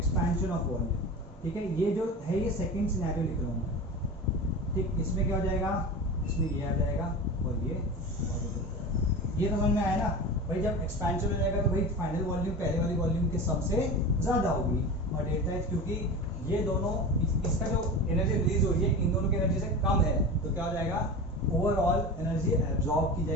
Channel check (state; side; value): normal; both; correlation 0.30